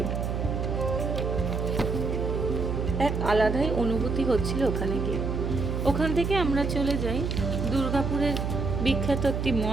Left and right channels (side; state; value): right; noise; hum, 1 dB below the sound